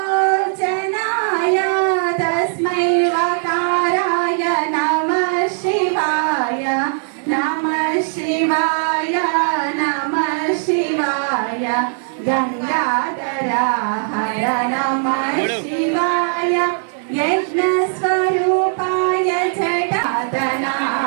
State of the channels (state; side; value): silent; left; digital silence